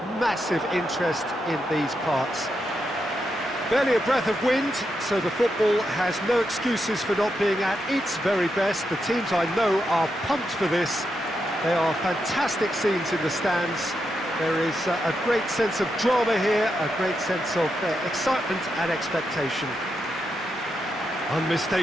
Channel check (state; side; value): normal; both; correlation 0.84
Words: massive interest in these parts. Barely a breath of wind, so the football has no excuses for not being at its very best. The teams I know are pumped for this. They are fantastic scenes in the stands. There is a great sense of drama here, a great sense of excitement and expectation.